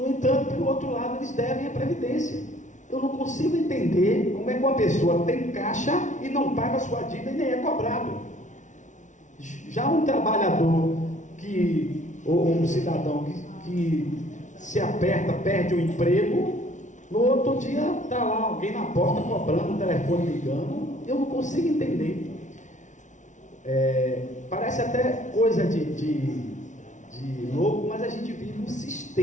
entanto, pelo outro lado, eles devem a Previdência. Eu não consigo entender como é que uma pessoa tem caixa e não paga a sua dívida e nem é cobrado. Já um trabalhador ou um cidadão que se aperta, perde o emprego, no outro dia está lá alguém na porta cobrando, o telefone ligando, eu não consigo entender. Parece até coisa de louco, mas a gente vive um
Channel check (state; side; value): late; right; 0.36 ms